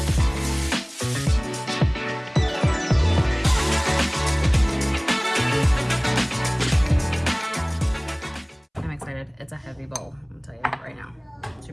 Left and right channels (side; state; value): both; identical; correlation 1.00